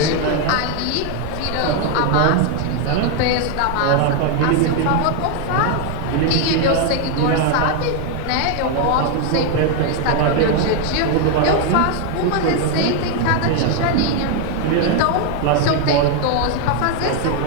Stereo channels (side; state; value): both; different; correlation 0.01